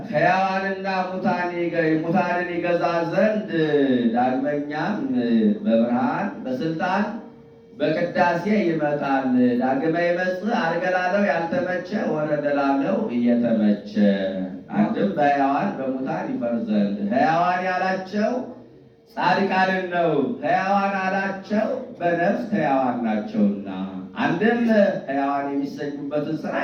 ሕያዋንና ሙታንን ይገዛ ዘንድ ዳግመኛም በብርሃን በስልጣን በቅዳሴ ይመጣል። ዳግመ ይመጽእ ዐርገ ላለው ያልተመቸ ወረደ ላለው እየተመቸ አንድም በሕያዋን በሙታን ይፈርድ ዘንድ ሕያዋን ያላቸው ጻድቃንን ነው። ሕያዋን አላቸው በነፍስ ሕያዋን ናቸውና አንድም ሕያዋን የሚሰኙበትን ሥራ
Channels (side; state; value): both; identical; correlation 1.00